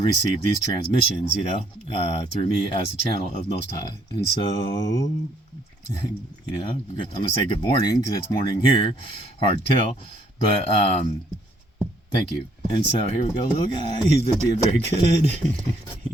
receive these transmissions, through me as the channel of Most High. And so, I'm going to say good morning, because it's morning here. Hard to tell, but thank you. And so here we go, little guy. He's been being very good.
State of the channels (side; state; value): both; normal; correlation 0.66